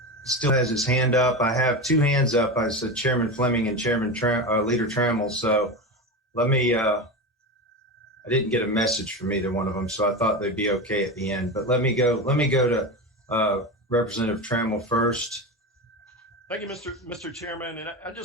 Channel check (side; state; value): both; normal; correlation 0.21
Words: still has his hand up. I have two hands up. I said Chairman Fleming and Leader Trammell. So let me. I didn't get a message from either one of them, so I thought they'd be okay at the end. But let me go to Representative Trammell first. Thank you, Mr. Chairman. And I